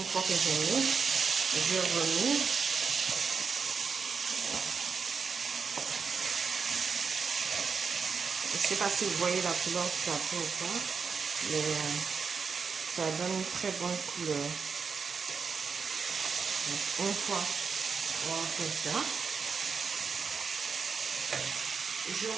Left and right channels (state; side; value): quieter; left; 5.6 dB